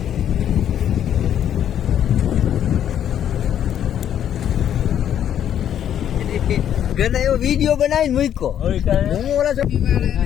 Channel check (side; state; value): right; quieter; 10.0 dB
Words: ઘરે એવો વિડીયો બનાવીને મૂક્યો. હું ઓલા